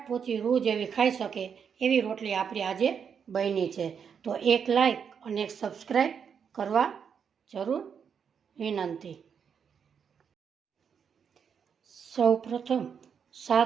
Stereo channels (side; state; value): left; quieter; 7.1 dB